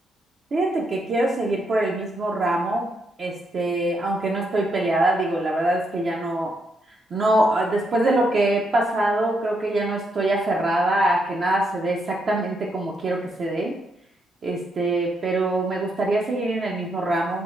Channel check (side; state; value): both; normal; correlation 0.78